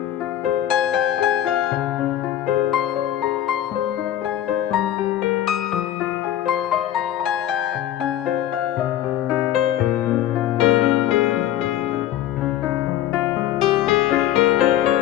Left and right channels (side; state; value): right; quieter; 12.0 dB